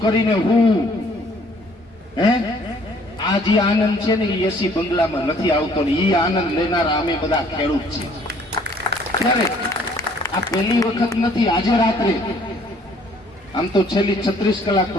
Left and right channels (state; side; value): normal; both; correlation 0.60